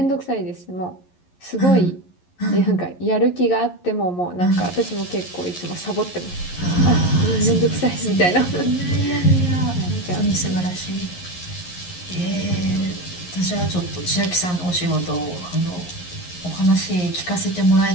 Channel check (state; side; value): late; right; 11 ms